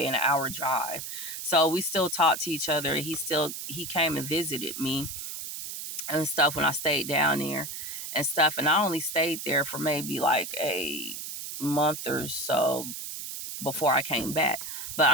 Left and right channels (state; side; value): noise; right; hiss, 7 dB below the sound